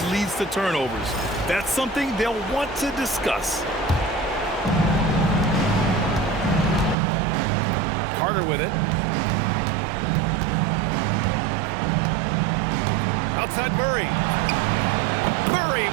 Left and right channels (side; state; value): left; drops out; at 7.0 s